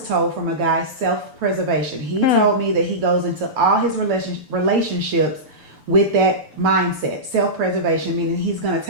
told from a guy, self-preservation. He told me that he goes into all his relationships with that mindset, self-preservation, meaning he's going to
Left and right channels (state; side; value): late; left; 6.8 ms